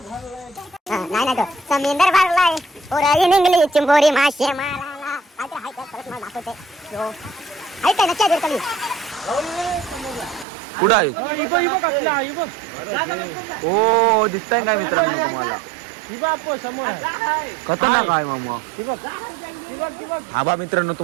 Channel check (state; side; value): drops out; left; at 10.5 s